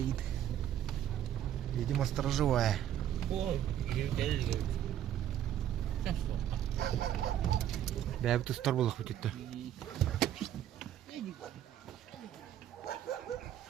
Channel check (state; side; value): quieter; left; 11.1 dB